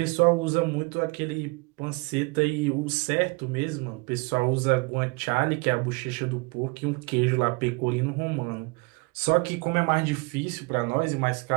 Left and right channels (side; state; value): left; quieter; 28.8 dB